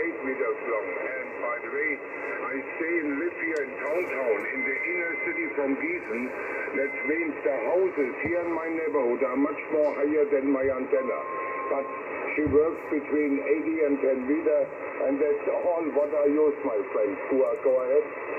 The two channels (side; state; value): both; identical; correlation 1.00